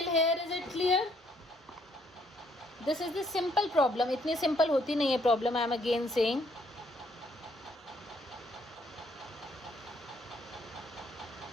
here is it clear? This is the simple problem. इतनी simple होती नहीं है problem. I am again saying.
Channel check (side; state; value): both; normal; correlation 0.68